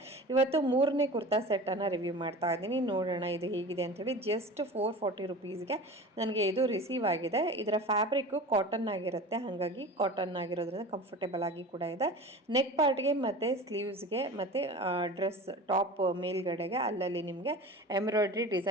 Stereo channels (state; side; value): normal; both; correlation 0.35